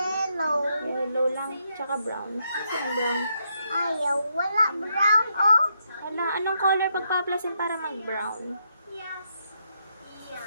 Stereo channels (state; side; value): inverted; both; correlation -0.78